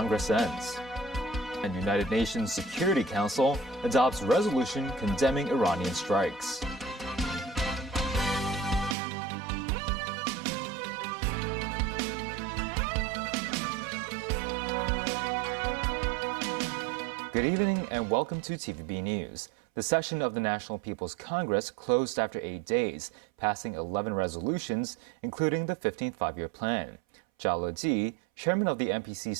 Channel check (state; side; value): drops out; left; at 9.0 s